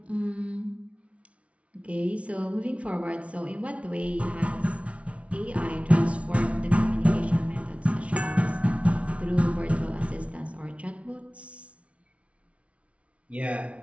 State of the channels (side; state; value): left; late; 0.063 ms